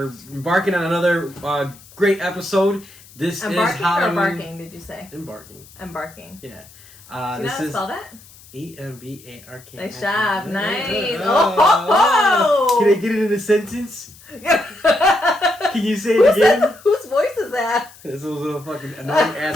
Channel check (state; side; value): noise; left; hiss, 23 dB below the sound